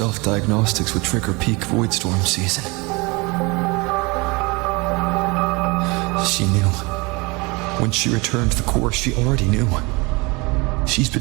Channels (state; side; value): quieter; left; 26.5 dB